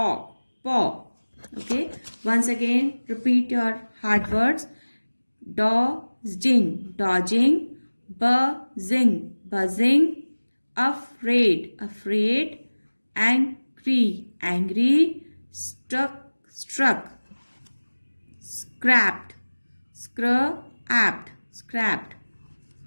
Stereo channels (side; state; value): both; inverted; correlation -1.00